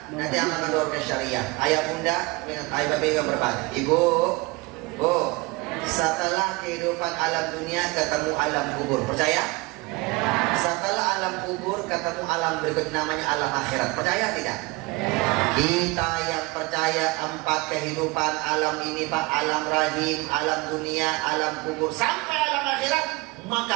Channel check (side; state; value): left; quieter; 24.5 dB